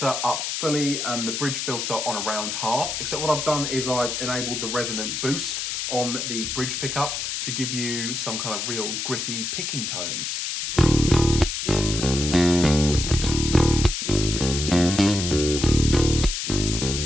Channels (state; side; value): noise; left; hiss, 3 dB below the sound